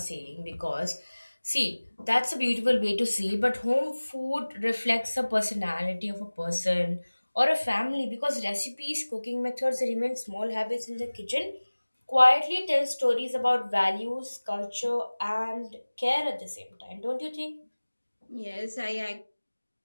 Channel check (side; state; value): both; inverted; correlation -1.00